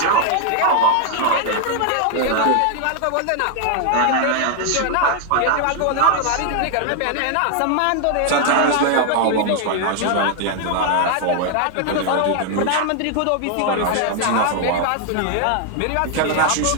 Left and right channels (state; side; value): different; both; correlation 0.00